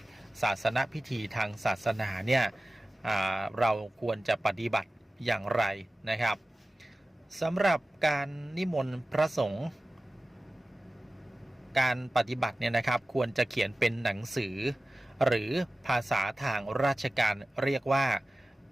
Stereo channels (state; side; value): normal; both; correlation 0.96